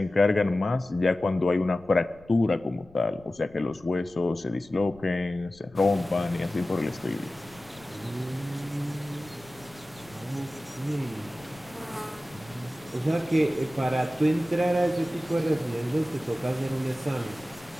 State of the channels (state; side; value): noise; left; rumble, 24 dB below the sound